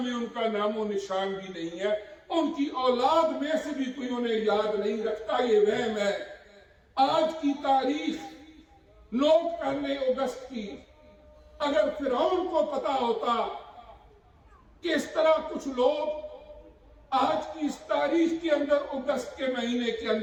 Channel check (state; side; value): identical; both; correlation 1.00